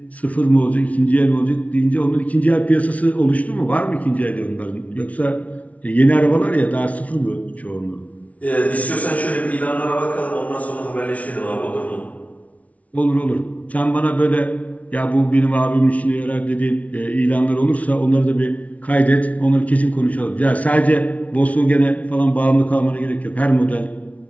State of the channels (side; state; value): right; late; 0.067 ms